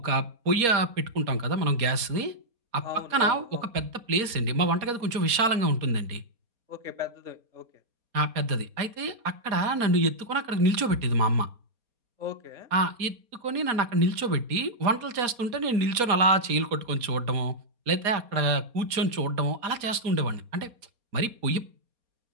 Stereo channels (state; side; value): late; left; 4.2 ms